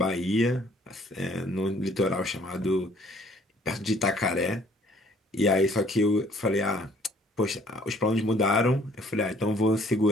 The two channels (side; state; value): both; normal; correlation 0.59